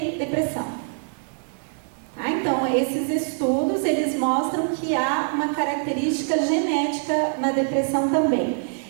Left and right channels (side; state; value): left; silent; digital silence